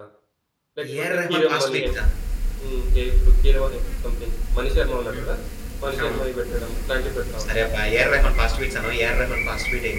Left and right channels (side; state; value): both; identical; correlation 1.00